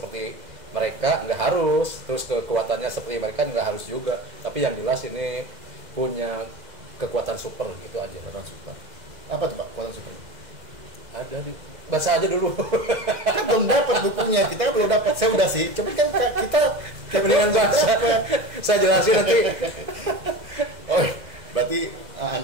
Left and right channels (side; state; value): left; late; 2.0 ms